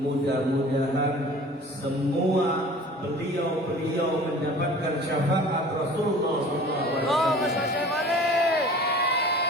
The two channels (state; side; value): normal; both; correlation 0.44